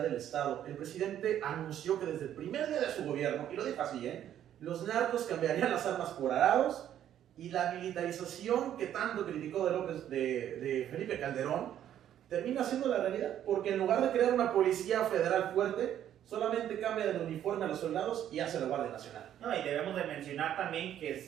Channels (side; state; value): left; quieter; 10.8 dB